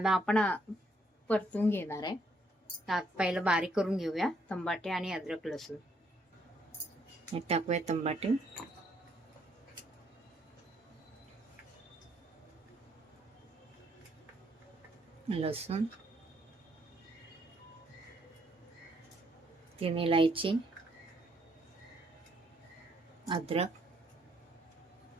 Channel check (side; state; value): both; normal; correlation 0.71